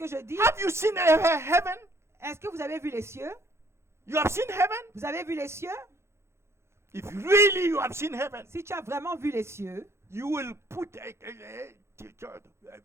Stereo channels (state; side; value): late; left; 0.13 ms